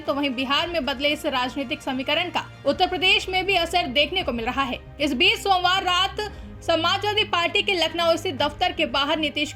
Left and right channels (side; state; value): both; identical; correlation 1.00